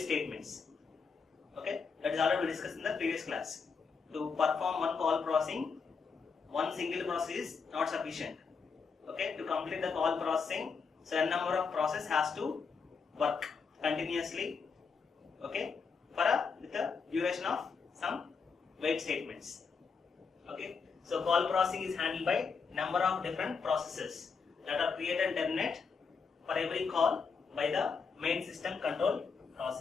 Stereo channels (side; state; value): right; quieter; 5.3 dB